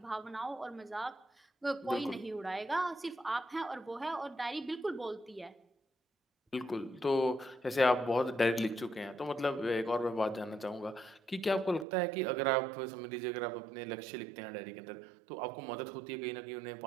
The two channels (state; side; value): drops out; left; at 11.9 s